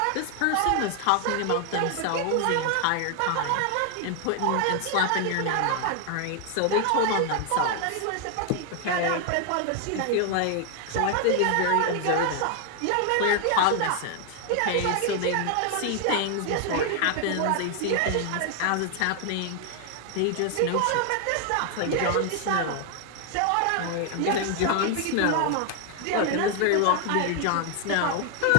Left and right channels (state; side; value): different; both; correlation 0.00